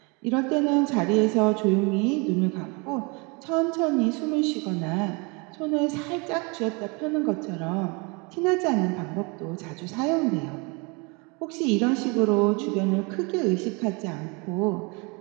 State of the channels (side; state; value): left; quieter; 30.1 dB